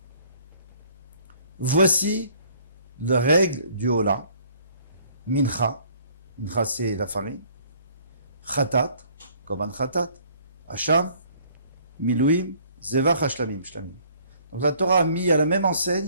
Voici la règle du Ola. Mincha. Mincha, c'est la farine. Chatat, Koban Chatat. Hasham, Milouim, Zevach Shlamim. Donc la Torah a mis à la même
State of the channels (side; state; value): both; inverted; correlation -0.59